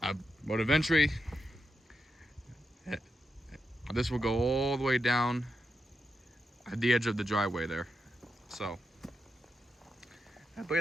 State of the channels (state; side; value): normal; both; correlation 0.86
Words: but eventually this will go all the way down at the edge of the driveway there. So,